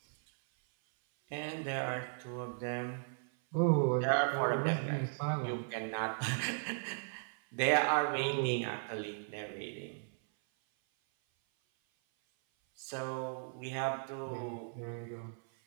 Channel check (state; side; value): silent; left; 54 dB below the other